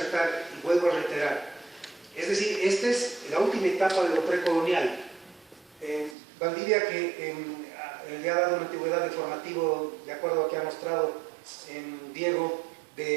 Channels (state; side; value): drops out; left; at 6.2 s